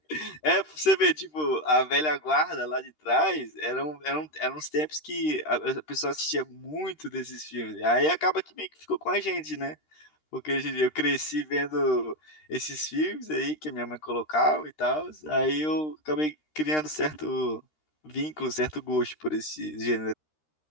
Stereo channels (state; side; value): late; right; 13 ms